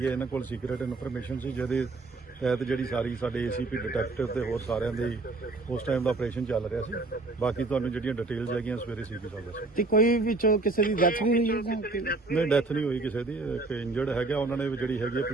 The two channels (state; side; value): quieter; left; 3.4 dB